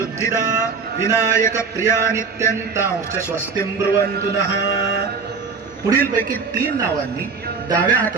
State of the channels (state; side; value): quieter; left; 5.1 dB